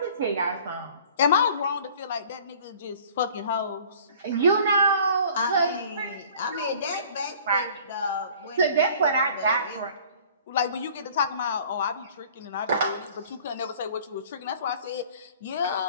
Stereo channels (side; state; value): both; inverted; correlation -0.50